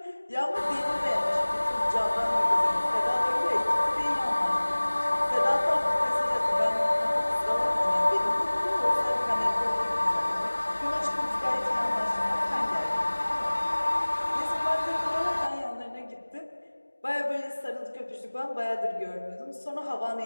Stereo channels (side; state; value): both; inverted; correlation -1.00